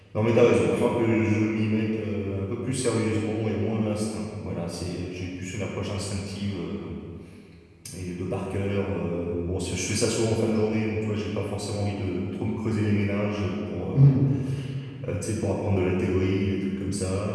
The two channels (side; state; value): both; identical; correlation 1.00